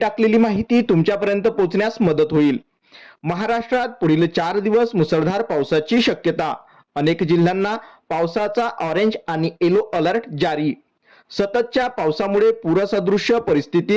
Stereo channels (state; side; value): identical; both; correlation 1.00